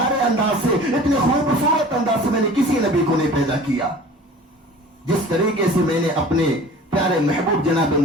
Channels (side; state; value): both; normal; correlation 0.43